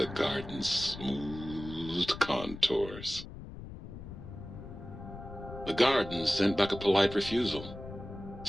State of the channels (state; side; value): noise; left; rumble, 12 dB below the sound